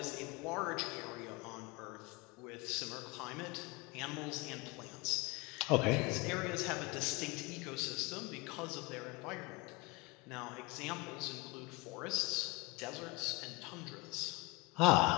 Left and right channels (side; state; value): right; quieter; 25.1 dB